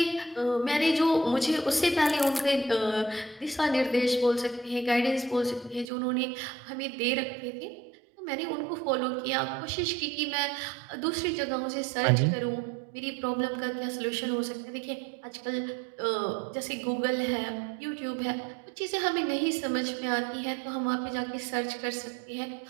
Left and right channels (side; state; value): left; drops out; at 5.9 s